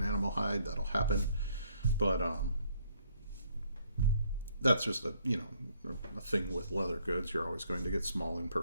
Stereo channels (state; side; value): inverted; both; correlation -0.66